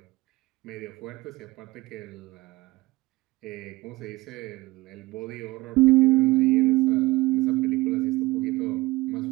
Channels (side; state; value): left; quieter; 20.4 dB